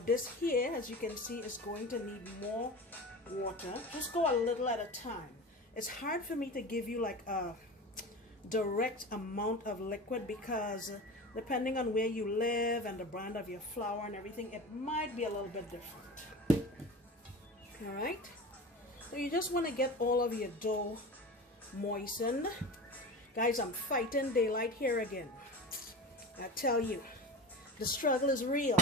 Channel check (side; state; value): both; normal; correlation 0.32